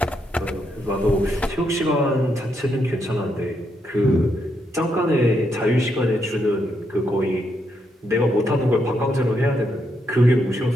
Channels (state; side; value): normal; both; correlation 0.79